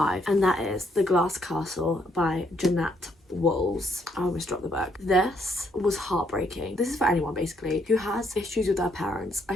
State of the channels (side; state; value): both; normal; correlation 0.71